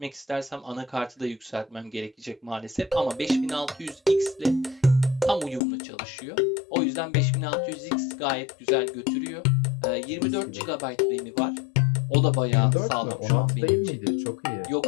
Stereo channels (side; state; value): right; drops out; at 5.6 s